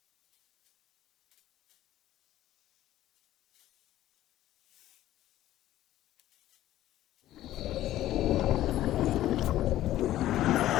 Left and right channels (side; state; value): right; quieter; 13.9 dB